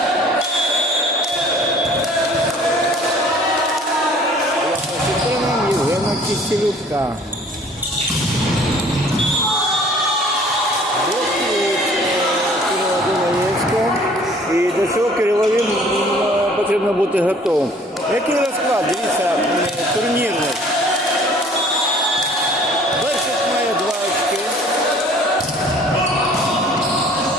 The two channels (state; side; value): normal; both; correlation 0.53